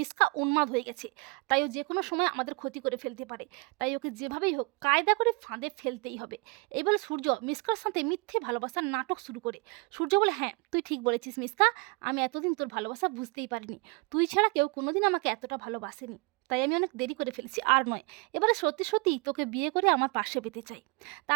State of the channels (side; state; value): left; quieter; 30.0 dB